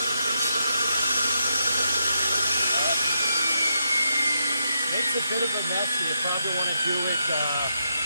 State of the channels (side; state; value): both; inverted; correlation -0.80